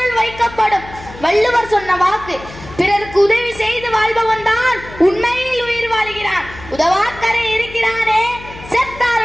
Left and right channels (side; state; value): left; noise; hum, 16 dB below the sound